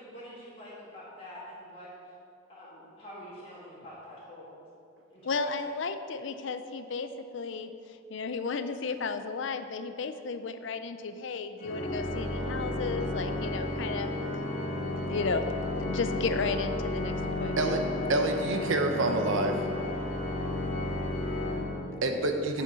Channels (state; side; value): normal; both; correlation 0.11